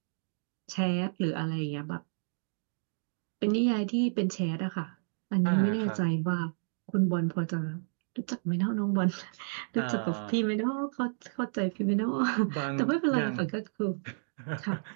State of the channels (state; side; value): silent; left; digital silence